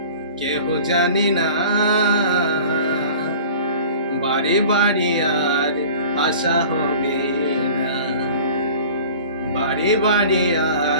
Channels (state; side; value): inverted; both; correlation -0.43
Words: কেহ জানে না, বারে বারে আর আশা হবে না, বারে বারে